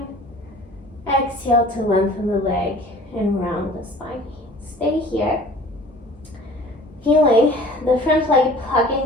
Exhale to lengthen the leg and round the spine. Stay here. Feeling the front leg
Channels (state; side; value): normal; both; correlation 0.47